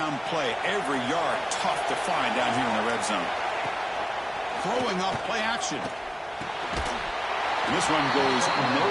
play. Every yard tough to find down here in the red zone. Throwing up play action. And this one goes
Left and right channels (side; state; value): both; identical; correlation 1.00